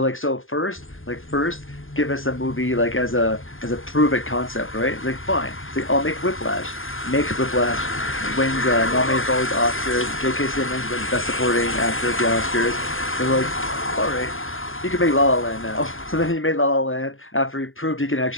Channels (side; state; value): right; late; 0.59 ms